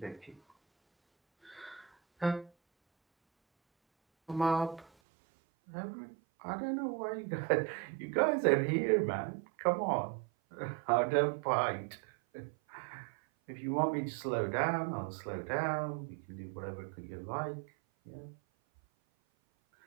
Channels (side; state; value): left; drops out; at 4.9 s